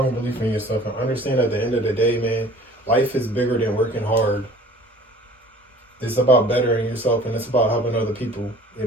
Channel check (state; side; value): normal; both; correlation 0.48